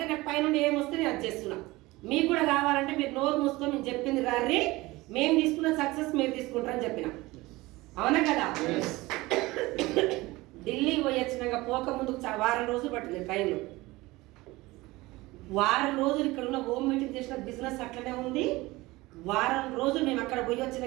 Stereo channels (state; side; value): quieter; left; 20.5 dB